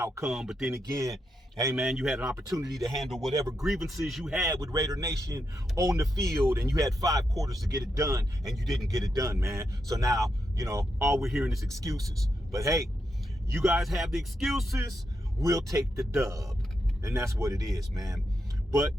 But then again, hey, man, you had an opportunity to handle whatever grievances you had with Raider Nation on the field, and you had 5 quarters to get it done, and you didn't get it done, man. So now, all we're hearing is excuses. But hey, you guys have the excuses. We'll take the dub. And that's what it is, man. But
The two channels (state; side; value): normal; both; correlation 0.83